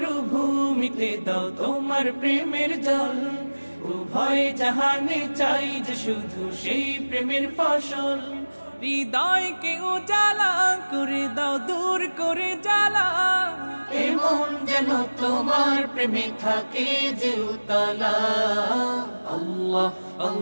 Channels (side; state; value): both; inverted; correlation -1.00